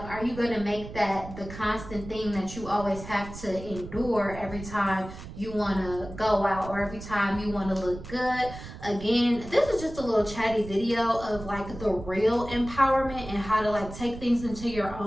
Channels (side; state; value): right; noise; rumble, 12 dB below the sound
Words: are you going to make that the constant thing that you always have to endure every time you want to go out, or every time you want to look good? Again, this is just a little chatty video of like the real empowerment and how to like take things into your